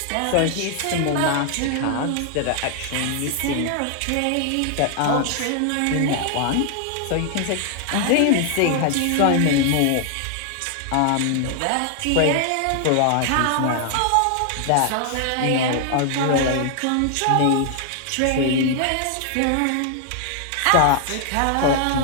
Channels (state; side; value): different; both; correlation 0.00